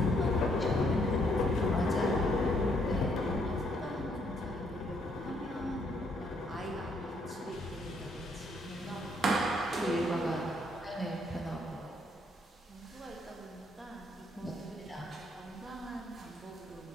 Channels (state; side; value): normal; both; correlation 0.70